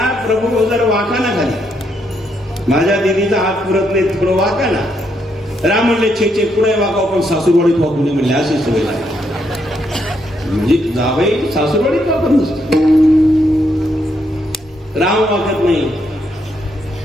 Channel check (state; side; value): normal; both; correlation 0.76